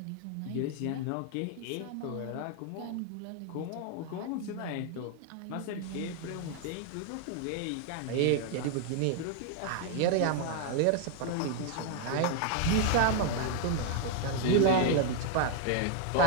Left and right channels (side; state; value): both; different; correlation 0.00